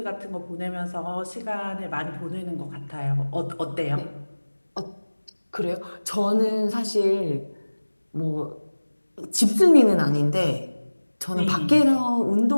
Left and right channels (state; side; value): inverted; both; correlation -1.00